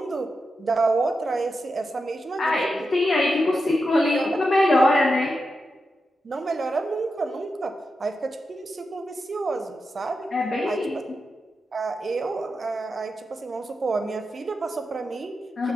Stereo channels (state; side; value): normal; both; correlation 0.88